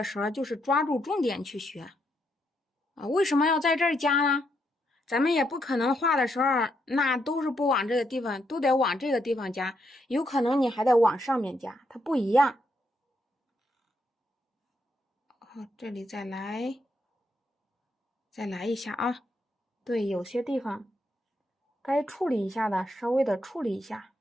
时候就是抓住重点去学啊。为什么要在这儿加呢？咱们也不可能画的时候那都是不往这个地方，都得往这个地方加，有可能你还得往上面加，它不一样。好，这里再来一下啊。对，有些地方该处理一下的稍微的处理一下。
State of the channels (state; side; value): normal; both; correlation 0.78